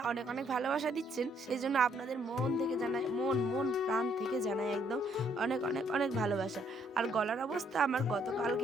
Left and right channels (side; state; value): both; normal; correlation 0.68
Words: অনেক অনেক ভালোবাসা দিচ্ছেন, সেই জন্য আপনাদের মন থেকে জানাই, মন মন প্রাণ থেকে জানাই একদম অনেক অনেক অনেক ভালোবাসা। আর গলার অবস্থা আমার